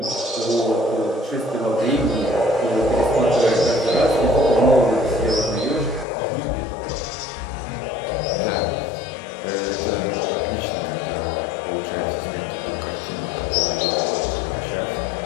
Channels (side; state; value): right; drops out; at 6.1 s